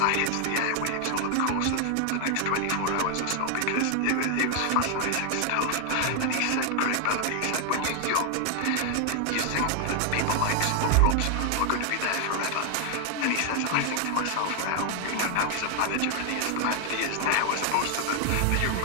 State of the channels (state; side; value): different; both; correlation 0.00